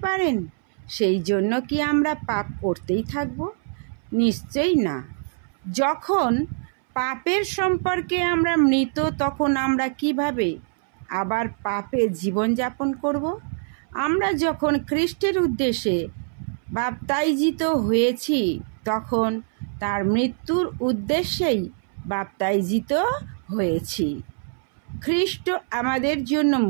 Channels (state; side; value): silent; left; 63 dB below the other